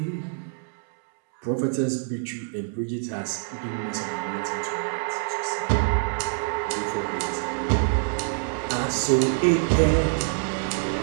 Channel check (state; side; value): silent; left; digital silence